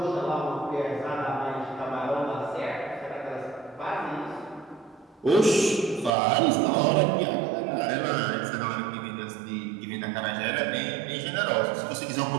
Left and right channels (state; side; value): drops out; left; at 6.1 s